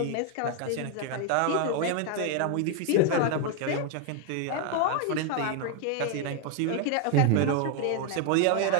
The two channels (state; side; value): different; both; correlation 0.01